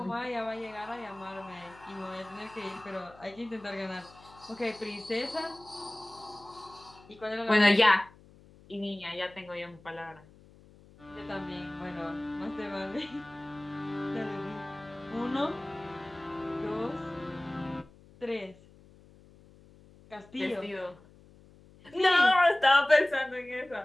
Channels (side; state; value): left; noise; hum, 24 dB below the sound